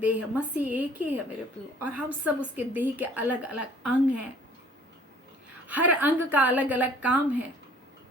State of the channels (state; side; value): normal; both; correlation 0.54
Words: है, मसीह एक ही है मेरे प्रियो, और हम सब उसके देह के अलग अलग अंग हैं। हर अंग का अलग अलग काम है,